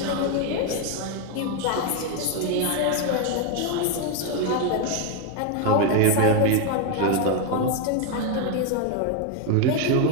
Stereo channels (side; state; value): both; different; correlation 0.01